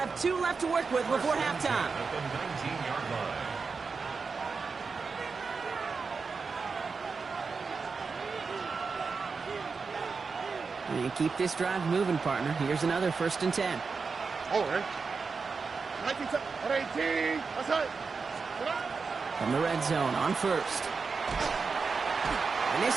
2 left to work with before halftime. At the 19-yard line. And keep this drive moving, partner. Here's another 1st and 10. All right. 18, outside. From the red zone on 1st. And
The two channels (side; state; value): left; quieter; 4.9 dB